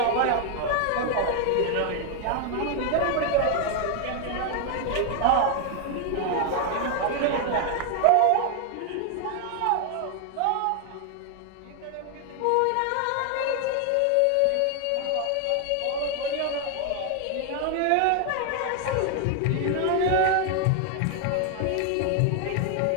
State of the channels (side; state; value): both; different; correlation 0.00